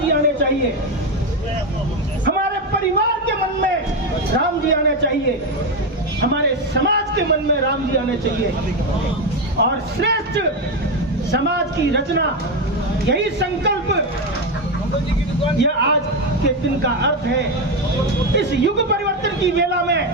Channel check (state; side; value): normal; both; correlation 0.11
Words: आने चाहिए, हमारे परिवार के मन में राम जी आने चाहिए, हमारे समाज के मन में राम जी आने चाहिए और श्रेष्ठ समाज की रचना, यही संकल्प, यह आज के दिन का अर्थ है। इस युग परिवर्तन की वेला में